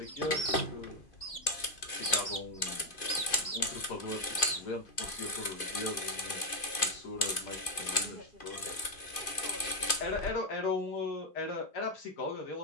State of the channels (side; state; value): right; late; 2.5 ms